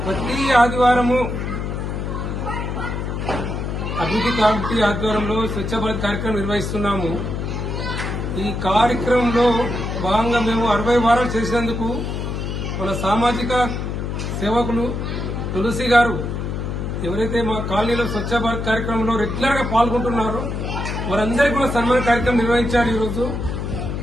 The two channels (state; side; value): noise; left; hum, 3 dB below the sound